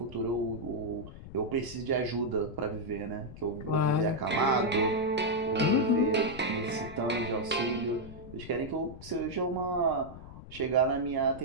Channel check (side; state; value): left; noise; rumble, 14 dB below the sound